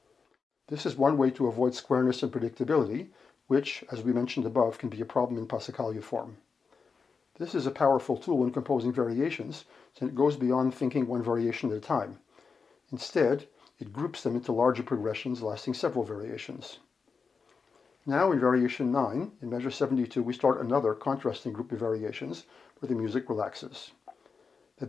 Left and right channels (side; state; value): right; quieter; 5.2 dB